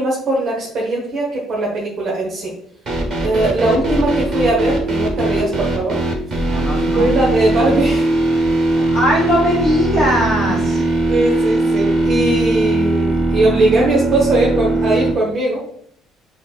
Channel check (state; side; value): normal; both; correlation 0.76